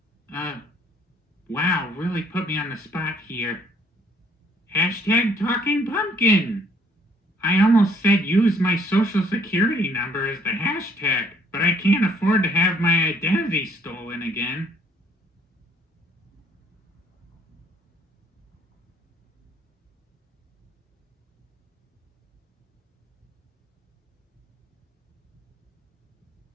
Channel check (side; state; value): both; normal; correlation 0.64